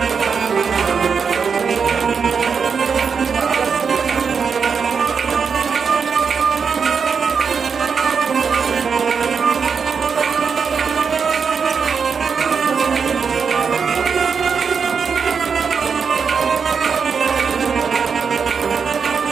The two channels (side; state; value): left; quieter; 6.0 dB